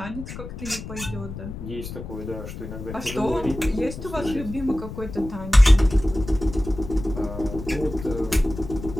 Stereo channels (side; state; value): left; noise; rumble, 10 dB below the sound